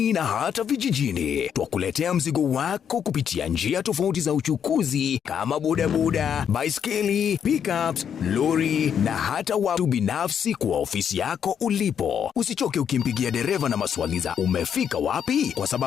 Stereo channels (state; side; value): quieter; right; 8.2 dB